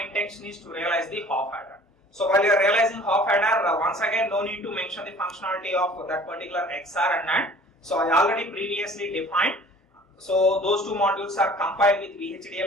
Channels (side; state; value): both; normal; correlation 0.48